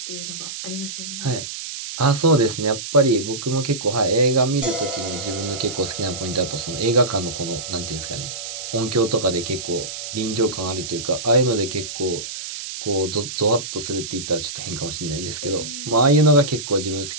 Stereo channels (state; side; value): noise; right; hiss, 8 dB below the sound